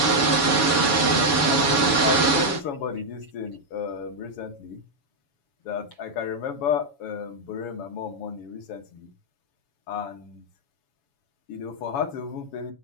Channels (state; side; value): late; right; 7.1 ms